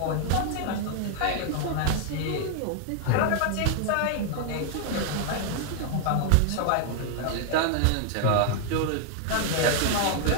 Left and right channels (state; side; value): different; both; correlation 0.00